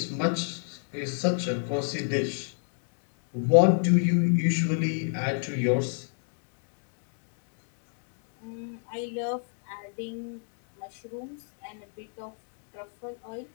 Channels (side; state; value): right; silent; 58 dB below the other